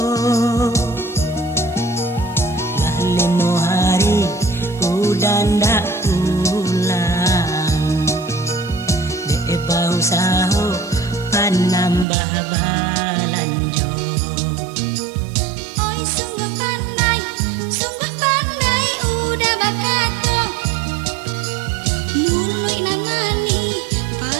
lah leno hari udah ndak pulang de bau saho panambah balanjo. Oi sungguh pandai udah bakato mulai namani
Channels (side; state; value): left; drops out; at 12.1 s